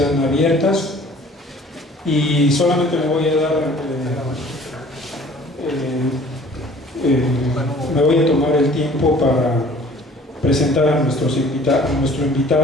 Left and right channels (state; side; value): normal; both; correlation 0.51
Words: abiertas y solamente me voy a dar me voy a tomar el tiempo para presentar a nuestro